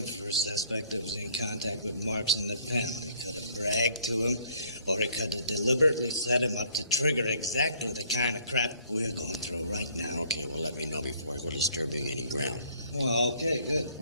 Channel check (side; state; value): both; inverted; correlation -0.60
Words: for a suspect that was in contact with Marx in the pen. They could have bragged to him, or they could have deliberately set him up to trigger exactly the kind of crap we're going through right now. Okay, well, let me know before I go disturbing any ground. Well, okay, good.